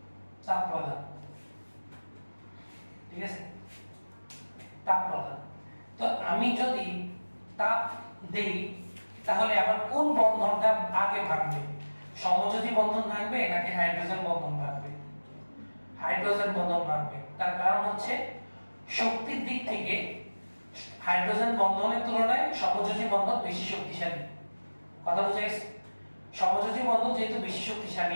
ঠিক আছে? তাপ প্রদান। তো আমি যদি তাপ দেই তাহলে আমার কোন বন্ধনটা আগে ভাঙবে? সমযোজী বন্ধন ভাঙবে নাকি হাইড্রোজেন বন্ধন ভাঙবে? হাইড্রোজেন বন্ধন ভাঙবে। তার কারণ হচ্ছে শক্তির দিক থেকে হাইড্রোজেন বন্ধনের তুলনায় সমযোজী বন্ধন বেশি শক্তিশালী। কথা বুঝা গেছে? সমযোজী বন্ধন যেহেতু বেশি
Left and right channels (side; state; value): both; inverted; correlation -1.00